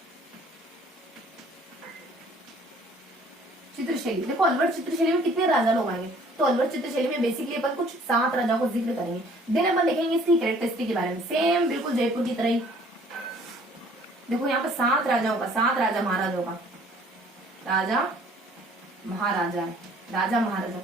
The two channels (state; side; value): normal; both; correlation 0.56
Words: चित्रशैली। देखो अलवर चित्रशैली में कितने राजा लोग आएंगे, तो अलवर चित्रशैली में बेसिकली अपन कुछ 7 राजाओं को जिक्र करेंगे। देन अपन देखेंगे इसकी कैरेक्टरिस्टिक के बारे में, सेम बिल्कुल जयपुर की तरह ही। देखो यहाँ पे 7 राजाओं का, 7 राजा महाराजाओं का, राजा महाराजा है, राजा महाराजा।